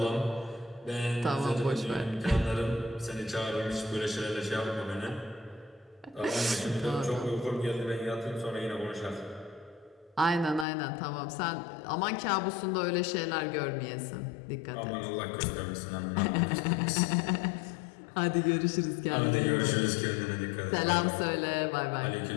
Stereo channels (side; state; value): right; drops out; at 10.7 s